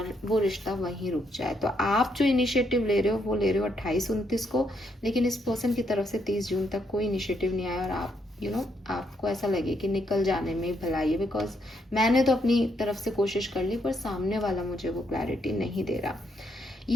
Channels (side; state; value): both; normal; correlation 0.76